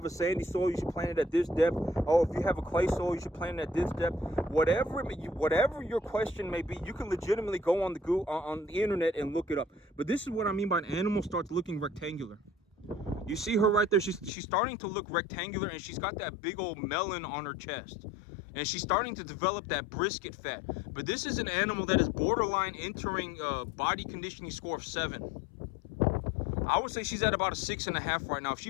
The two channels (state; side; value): drops out; right; at 14.3 s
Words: a sandy soil, you should plant it at this depth. Oh, if you have a clay soil, you should plant it at this depth. Whatever your question may be, you can legitimately go on the internet and look it up. But this is what I mean by an animal starts looking rectangular. You see her right there, she's starting to look rectangular, and she's got that big old melon on her chest. And she's starting to develop that brisket fat. But this is an animal that is borderline entering body conditioning score of 7. I would say she's at about a 6.5 right now. If